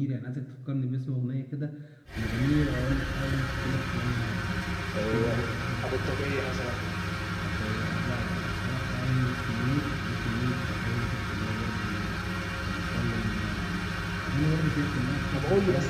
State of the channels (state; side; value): identical; both; correlation 1.00